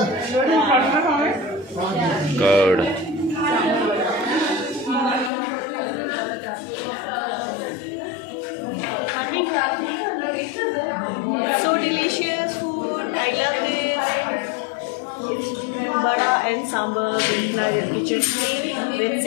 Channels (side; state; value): right; drops out; at 5.3 s